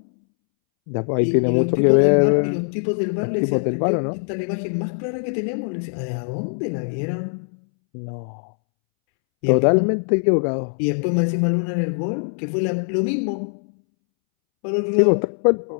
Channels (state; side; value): silent; right; 65 dB below the other